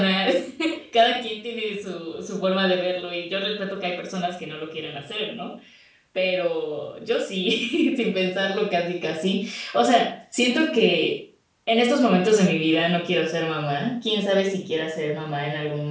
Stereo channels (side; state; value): both; identical; correlation 1.00